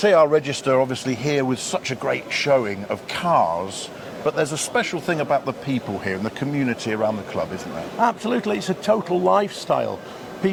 Register obviously here with such a great showing of cars, but there's a special thing about the people here and the community around the club, isn't there? Absolutely, it's a total lifestyle.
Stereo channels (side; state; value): both; identical; correlation 1.00